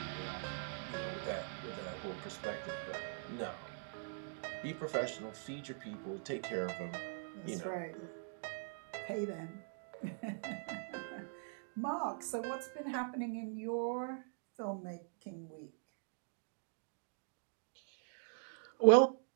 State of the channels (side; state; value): left; silent; digital silence